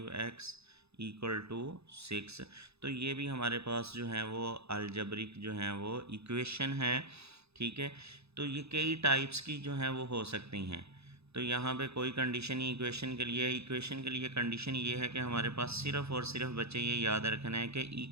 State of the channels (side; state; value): left; late; 0.79 ms